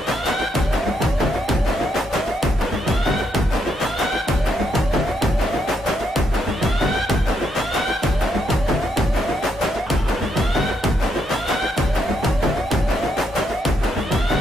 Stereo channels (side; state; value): both; normal; correlation 0.78